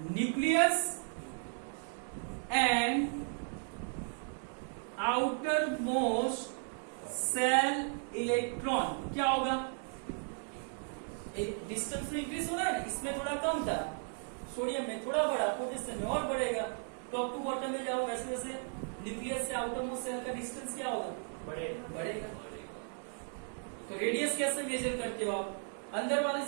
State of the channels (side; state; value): left; silent; 54 dB below the other